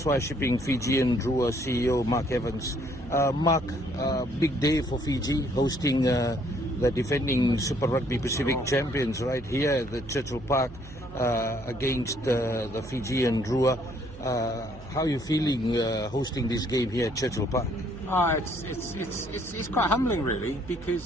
Shipping Fijian Drua CEO Mark Evans. Mark, big day for Fiji, hosting the defending Super Rugby Pacific champions right here at the Churchill Park against the Fijian Drua. How are you feeling hosting this game here at Churchill Park? It's quite humbling, really,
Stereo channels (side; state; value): right; noise; hum, 16 dB below the sound